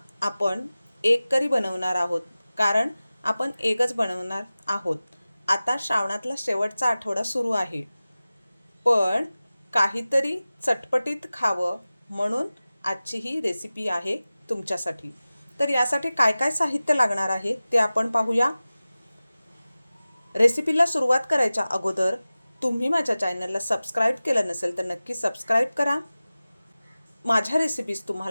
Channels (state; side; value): inverted; both; correlation -0.97